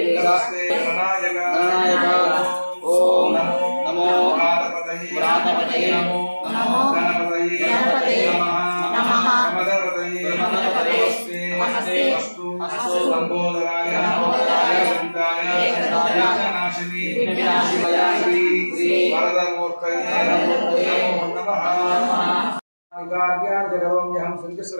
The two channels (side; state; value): both; inverted; correlation -1.00